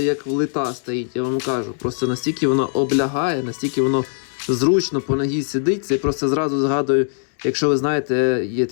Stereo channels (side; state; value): right; silent; digital silence